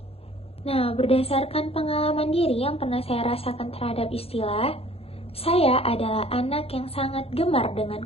Nah, berdasarkan pengalaman diri yang pernah saya rasakan terhadap istilah, saya adalah anak yang sangat gemar dengan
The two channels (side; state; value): right; late; 0.29 ms